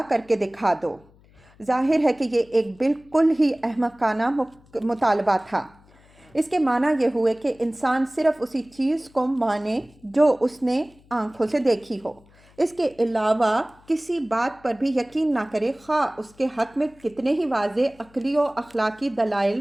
کر کے دکھا دو۔ ظاہر ہے کہ یہ ایک بالکل ہی احمقانہ مطالبہ تھا۔ اس کے معنی یہ ہوئے کہ انسان صرف اسی چیز کو مانے جو اس نے آنکھوں سے دیکھی ہو، اس کے علاوہ کسی بات پر بھی یقین نہ کرے، خواہ اس کے حق میں کتنے ہی واضح عقلی و اخلاقی دلائل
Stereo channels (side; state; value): left; noise; hum, 28 dB below the sound